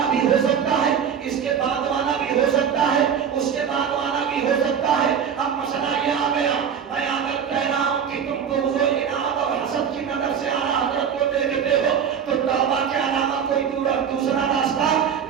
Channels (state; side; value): quieter; left; 7.7 dB